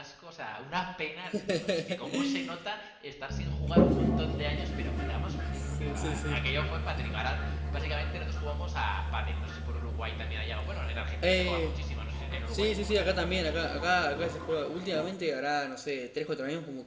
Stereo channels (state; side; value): identical; both; correlation 1.00